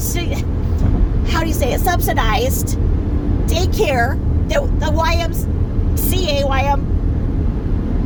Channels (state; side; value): identical; both; correlation 1.00